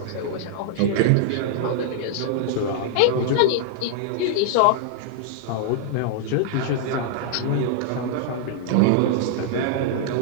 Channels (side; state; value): both; different; correlation -0.01